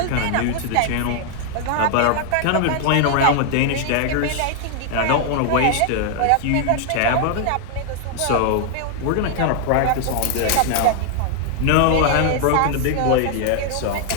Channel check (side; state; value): both; different; correlation 0.00